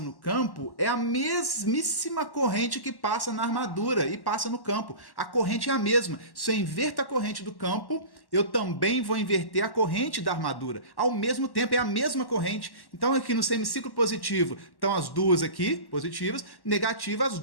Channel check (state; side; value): late; right; 1.1 ms